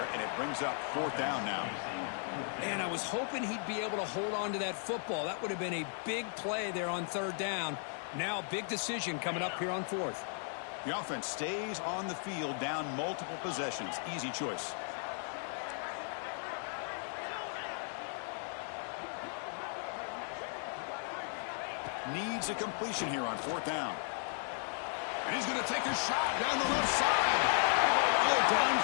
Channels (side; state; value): right; silent; 54 dB below the other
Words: and it brings up fourth down now. And I was hoping he'd be able to hold on to that football. That would have been a big play there on third down. Now a big decision coming up here on fourth. The offense stays on the field, down multiple possessions. Easy choice. Needs a completion here on fourth down. And he's going to take a shot down the left side. Oh,